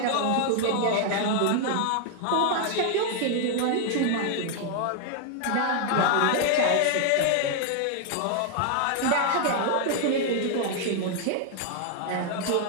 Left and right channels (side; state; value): both; different; correlation 0.00